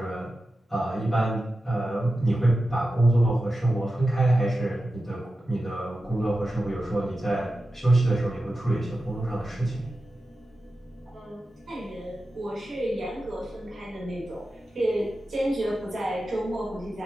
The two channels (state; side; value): normal; both; correlation 0.92